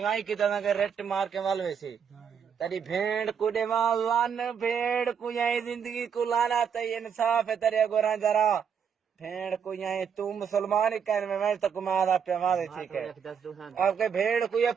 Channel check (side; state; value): left; quieter; 7.3 dB